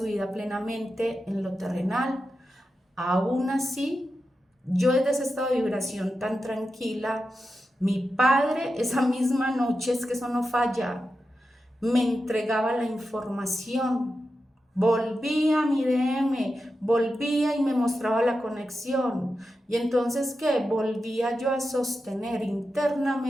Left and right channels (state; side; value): normal; both; correlation 0.90